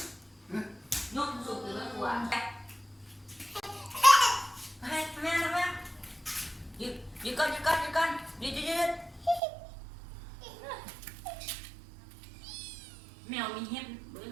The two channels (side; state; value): left; drops out; at 9.4 s